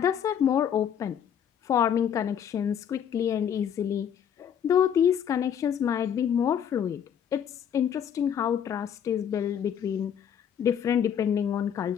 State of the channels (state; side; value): quieter; right; 8.7 dB